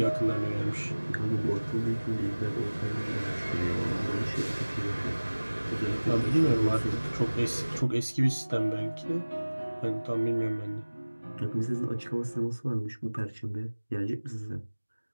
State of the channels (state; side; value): inverted; both; correlation -1.00